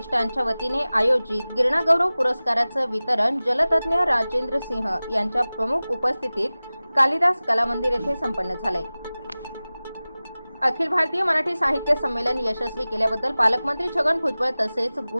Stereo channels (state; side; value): inverted; both; correlation -0.98